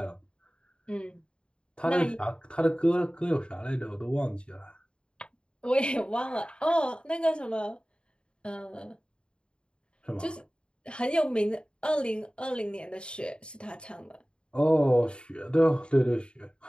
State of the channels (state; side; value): late; right; 0.053 ms